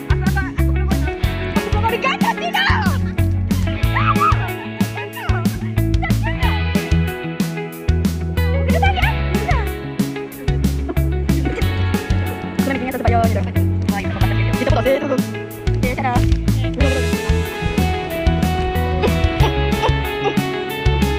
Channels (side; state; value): both; identical; correlation 1.00